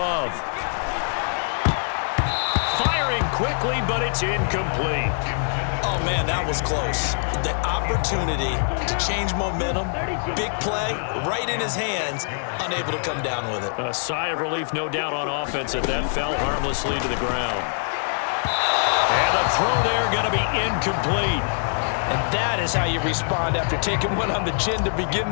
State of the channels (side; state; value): right; silent; digital silence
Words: Firing quickly, but it's incomplete. Oh, man, that was close. The opportunity to change momentum, big play, right in his hands, unable to come down with it. A sigh of relief, no doubt, on offense if that fell harmlessly to the ground. And the throw there going to be incomplete. And that is how you respond after taking one on the chin to begin